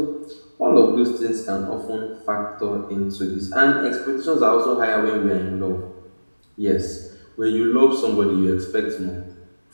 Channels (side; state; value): both; inverted; correlation -1.00